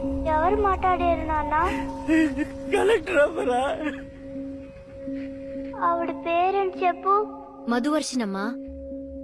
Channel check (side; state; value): both; identical; correlation 1.00